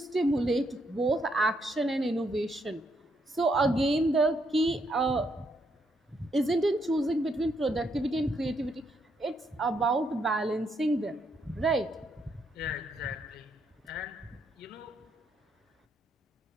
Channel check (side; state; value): both; normal; correlation 0.76